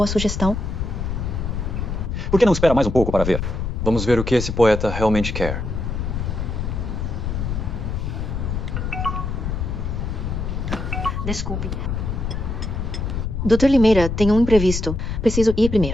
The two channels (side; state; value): left; noise; rumble, 3 dB below the sound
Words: sugestão? Por que não espera mais um pouco para ver? Vamos ver o que esse poeta realmente quer. Desculpe. Dr. Limeira, tem um imprevisto. Preciso ir